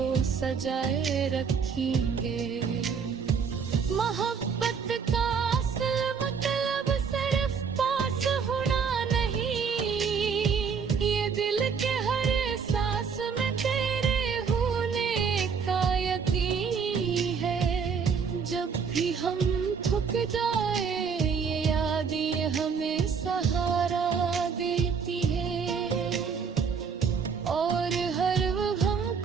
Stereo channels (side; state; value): left; quieter; 6.1 dB